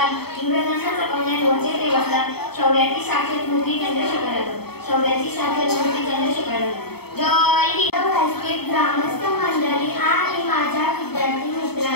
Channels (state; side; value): late; right; 0.97 ms